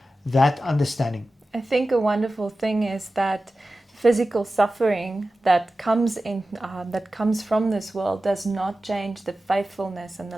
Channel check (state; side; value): normal; both; correlation 0.95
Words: that understanding. I think a wonderful thing is that physical suffering that comes from this world does not change the faithfulness and the